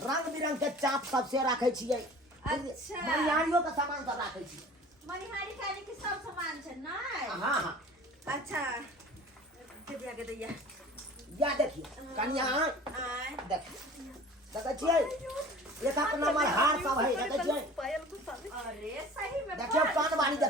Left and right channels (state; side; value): normal; both; correlation 0.43